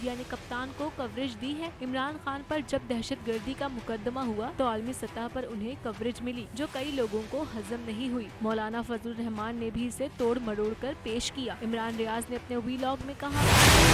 ने कप्तान को कवरेज दी है। इमरान खान पर जब दहशतगर्दी का मुकदमा हुआ तो आलमी सतह पर उन्हें कवरेज मिली, जो कई लोगों को हजम नहीं हुई। मौलाना फजलुर रहमान ने भी इसे तोड़ मरोड़ कर पेश किया। इमरान रियाज ने अपने वीलॉग में कहा,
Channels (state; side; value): identical; both; correlation 1.00